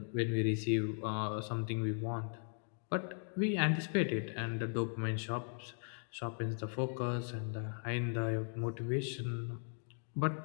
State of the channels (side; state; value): right; silent; 52 dB below the other